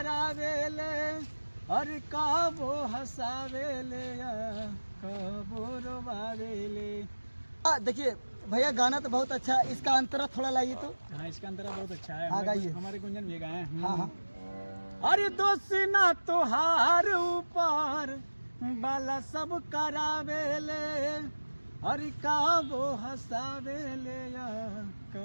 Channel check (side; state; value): both; inverted; correlation -1.00